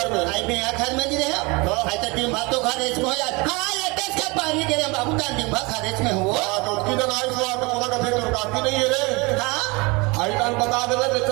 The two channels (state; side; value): quieter; left; 26.3 dB